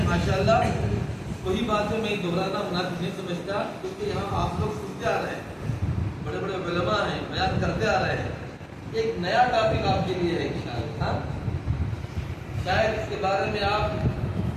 ماشاءاللہ. وہی باتیں میں دہرانا مناسب نہیں سمجھتا، کیونکہ یہاں آپ لوگ سنتے آ رہے ہیں، بڑے علماء ہیں، بیان کرتے آ رہے ہیں. ایک نیا ٹاپک آپ کے لیے ہے انشاءاللہ. شاید اس کے بارے میں آپ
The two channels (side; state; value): both; identical; correlation 1.00